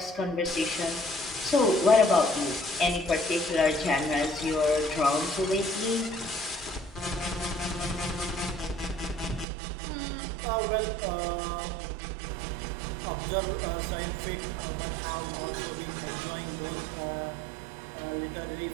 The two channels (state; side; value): drops out; left; at 9.5 s